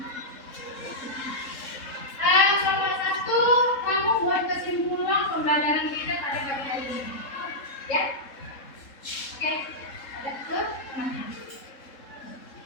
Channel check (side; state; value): right; late; 3.7 ms